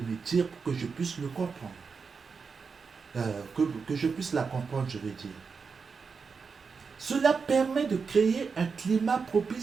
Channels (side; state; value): left; quieter; 5.3 dB